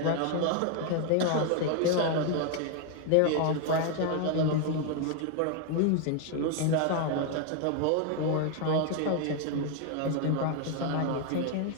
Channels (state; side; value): different; both; correlation 0.00